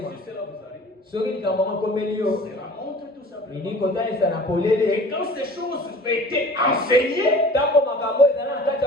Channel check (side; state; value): both; normal; correlation 0.44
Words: Si cela vous arrive, Soki likambo komeli yo. c'est la montre tout simplement. Ini kotalisa na Et polele. quand ces choses étaient enseignées, Tango makambo ezala na kati